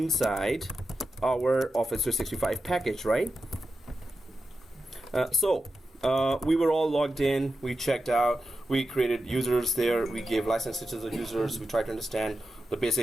our Office 365 package, right? We were all logged in, we checked out, we created users there, we gave licenses to the users, we tried to understand the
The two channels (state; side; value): normal; both; correlation 0.90